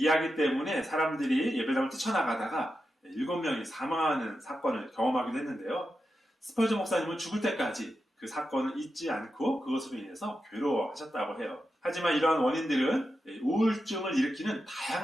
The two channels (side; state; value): both; normal; correlation 0.89